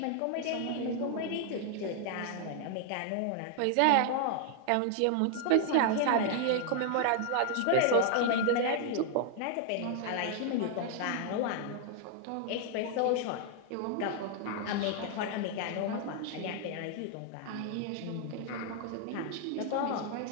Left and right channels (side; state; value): both; different; correlation 0.00